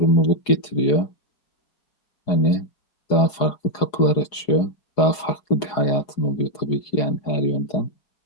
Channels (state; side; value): late; right; 4.8 ms